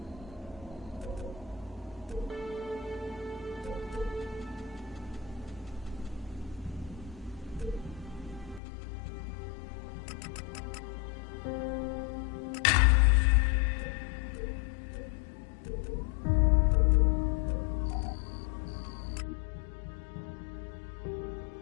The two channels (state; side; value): drops out; right; at 8.6 s